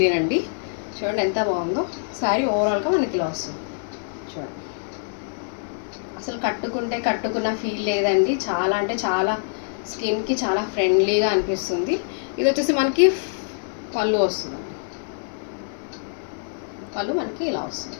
అండి. చూడండి ఎంత బాగుందో శారీ. ఓవరాల్గా మనకి ఇలా వస్తుంది. చూడండి అసలు కట్టుకున్న ఫీల్ లేదండి. చాలా అంటే చాలా స్కిన్కి చాలా ఫ్రెండ్లీగా అనిపిస్తుంది. ఇది వచ్చేసి మనకి పళ్ళు వస్తుంది. పళ్ళు మనకి ఇలా వస్తుంది.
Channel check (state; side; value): silent; right; 62 dB below the other